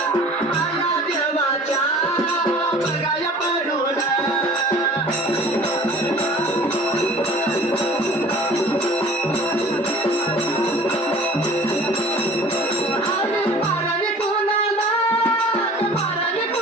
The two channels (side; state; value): both; normal; correlation 0.46